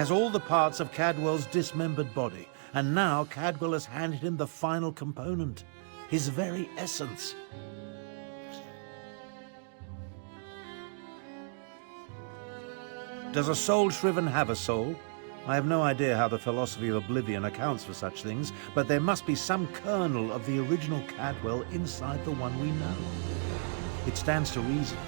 all the parts of Cadwell's dismembered body, and now Cadwell has handed him the final component. his very essence. Does a soul shriven have a soul? I have no idea how the philosophy of Oblivion accounts for such things, but there must be some kernel of the original Cadwell inside the one we know. It stands to reason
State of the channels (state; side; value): silent; left; 56 dB below the other